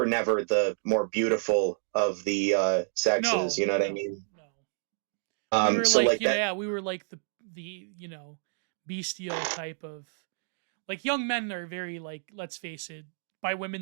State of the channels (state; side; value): silent; left; digital silence